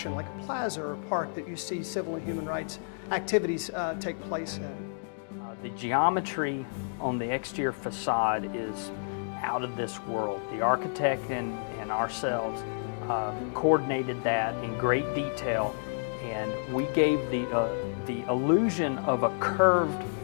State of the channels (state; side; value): silent; right; digital silence